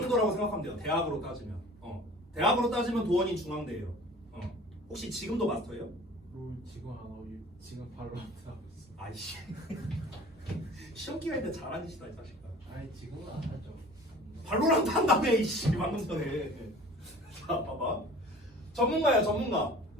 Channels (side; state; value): both; normal; correlation 0.44